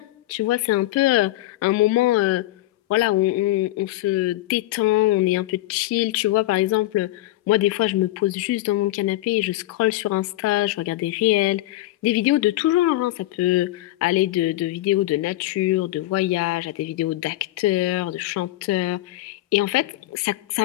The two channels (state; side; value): quieter; right; 16.6 dB